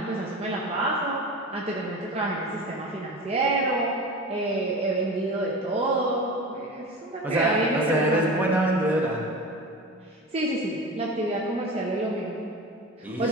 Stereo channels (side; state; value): both; normal; correlation 0.30